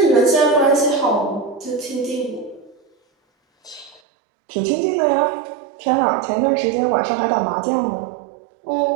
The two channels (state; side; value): drops out; left; at 4.0 s